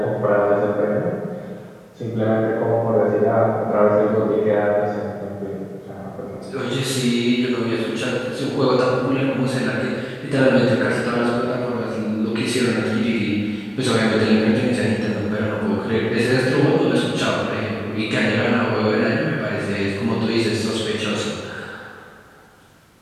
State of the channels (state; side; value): identical; both; correlation 1.00